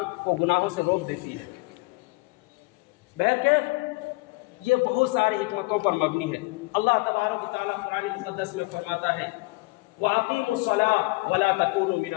کو گناہوں سے روک دیتی ہے. بہرکیف یہ بہت ساری حکمتوں پر مبنی ہے. اللہ تبارک و تعالیٰ قرآن مقدس میں فرماتا ہے وَأَقِيمُوا الصَّلَاةَ وَلَا تَكُونُوا مِنَ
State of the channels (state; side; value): quieter; right; 25.5 dB